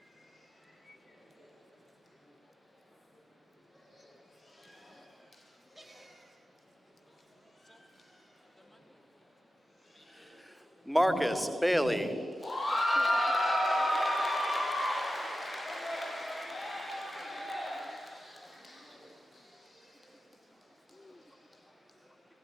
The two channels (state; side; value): normal; both; correlation 0.93